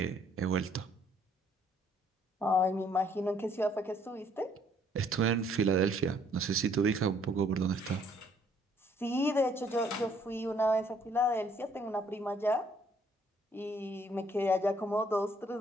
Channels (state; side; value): normal; both; correlation 0.65